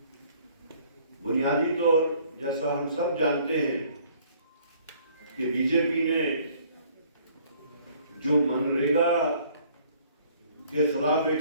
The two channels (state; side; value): inverted; both; correlation -0.59